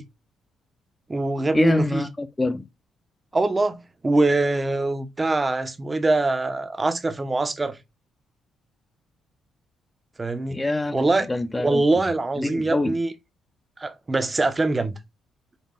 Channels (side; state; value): both; normal; correlation 0.95